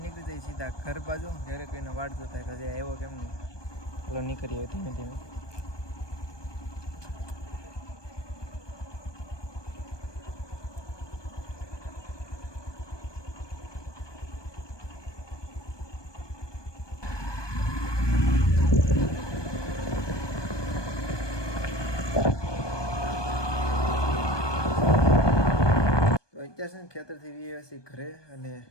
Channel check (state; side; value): late; right; 1.2 ms